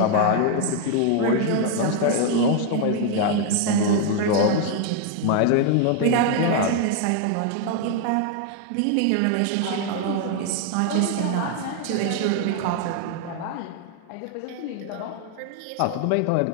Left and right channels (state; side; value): different; both; correlation 0.00